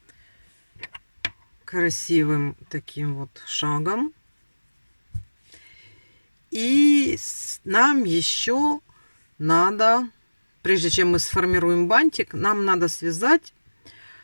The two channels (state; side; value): inverted; both; correlation -1.00